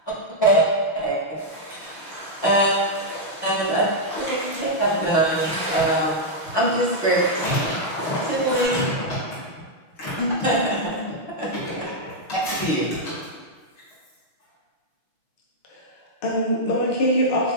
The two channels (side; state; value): right; late; 6.2 ms